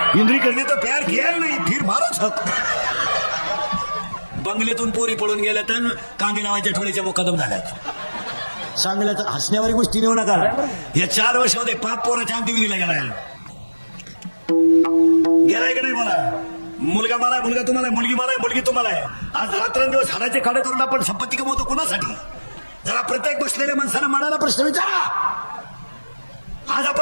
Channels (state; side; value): inverted; both; correlation -1.00